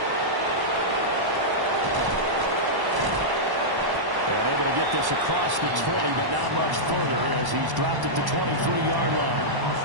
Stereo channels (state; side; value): late; left; 1.1 ms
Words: And able to get this across the 20, but not much further as he's dropped it to 23-yard line.